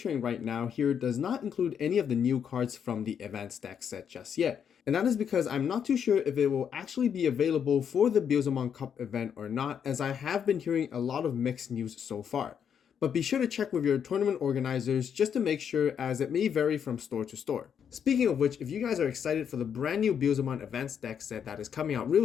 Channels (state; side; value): quieter; right; 7.9 dB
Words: right now here does not include any of the new cards from the advanced deck set just yet. And that is because I'm not too sure if it will actually be available for the Beelzemon Cup event or not, as I have been hearing a lot of mixed news so far. But be sure to check with your tournament organizers just to make sure, as it may vary from store to store. Speaking of which, if you guys are excited for the brand new Beelzemon Advanced Deck set that is coming out